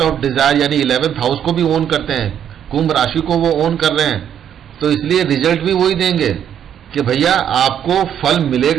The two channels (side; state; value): left; quieter; 9.4 dB